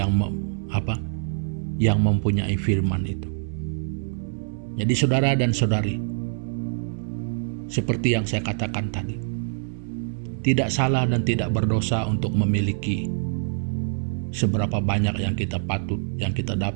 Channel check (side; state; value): left; silent; digital silence